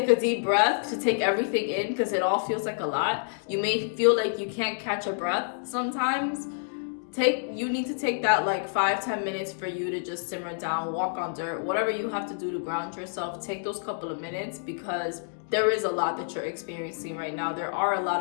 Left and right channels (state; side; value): silent; right; digital silence